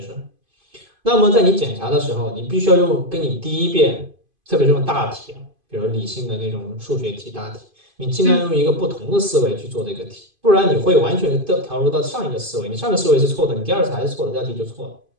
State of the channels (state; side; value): late; left; 2.5 ms